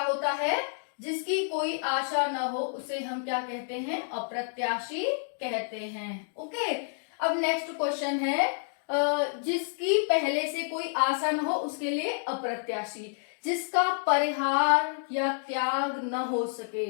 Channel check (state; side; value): silent; right; digital silence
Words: होता है? जिसकी कोई आशा न हो उसे हम क्या कहते हैं? अप्रत्याशी कहते हैं। ओके। अब नेक्स्ट क्वेश्चन है जिसकी पहले से कोई आशा न हो उसके लिए अप्रत्याशी। जिसका परिहार या त्याग न हो